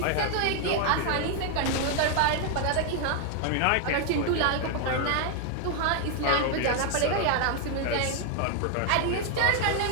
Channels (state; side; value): different; both; correlation 0.00